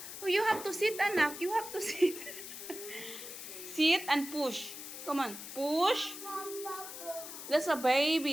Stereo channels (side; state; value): left; noise; hiss, 10 dB below the sound